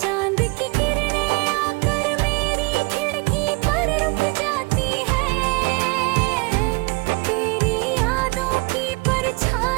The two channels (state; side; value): quieter; left; 28.1 dB